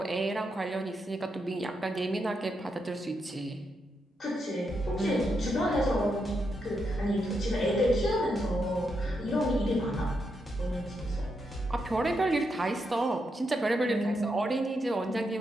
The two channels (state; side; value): normal; both; correlation 0.82